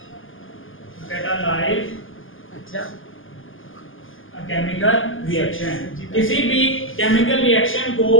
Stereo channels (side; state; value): right; late; 0.58 ms